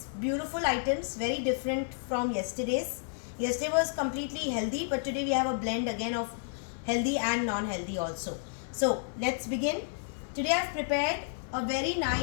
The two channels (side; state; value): right; silent; digital silence